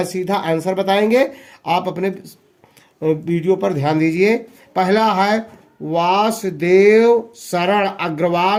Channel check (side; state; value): both; identical; correlation 1.00